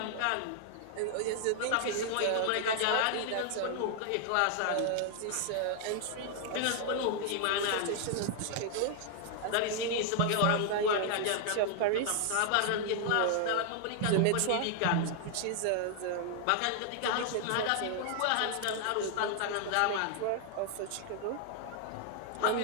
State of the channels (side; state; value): both; different; correlation 0.00